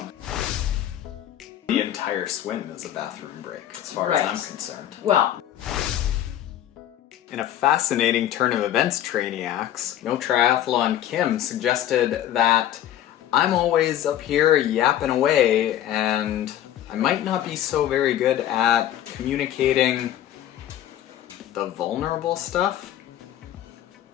The entire swim is a bathroom break, as far as I'm concerned. Well, in a fascinating turn of events, Trainiacs, No Triathlon Kim suggested that I'm always up here yapping away and I might not be so very good at communicating the vulnerable stuff.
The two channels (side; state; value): right; quieter; 11.8 dB